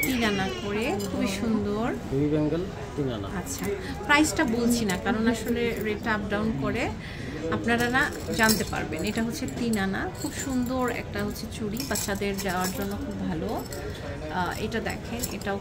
তিন আনা করে, খুবই সুন্দর। আচ্ছা, প্রাইসটা বলছি না কারণ আসলে রেটটা আপ ডাউন করে, আপনারা না জানতে পারবেন। এটা হচ্ছে তিন আনা, খুব সুন্দর একটা হচ্ছে চুড়ি, বাচ্চাদের যাওয়ার জন্য খুব ভালো। এটা দেখেন, এটাও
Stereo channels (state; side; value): identical; both; correlation 1.00